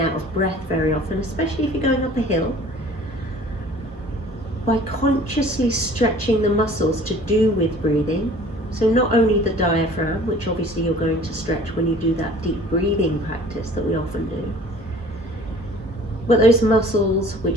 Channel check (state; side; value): normal; both; correlation 0.49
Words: of breath very often, especially if you're going up a hill, by consciously stretching the muscles to do with breathing, so not only the diaphragm, which obviously you're going to stretch when you do that deep breathing practice that we often do, but those muscles